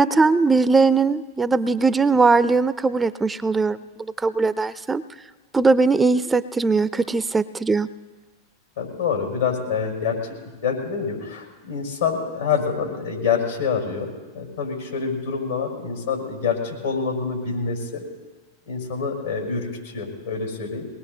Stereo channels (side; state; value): both; normal; correlation 0.55